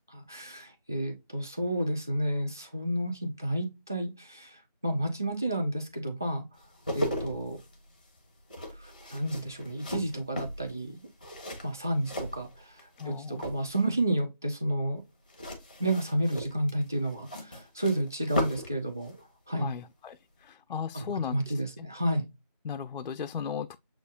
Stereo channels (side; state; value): both; inverted; correlation -0.80